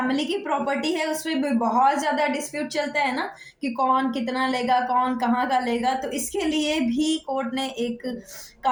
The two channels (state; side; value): identical; both; correlation 1.00